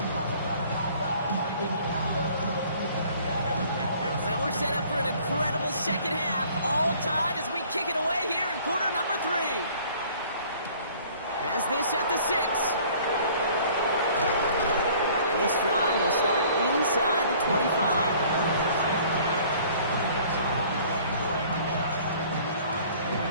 Second half, all tied as we kick it away here in quarter number 3. Has this at the 6. And this drive will start inside the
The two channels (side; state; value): both; inverted; correlation -0.53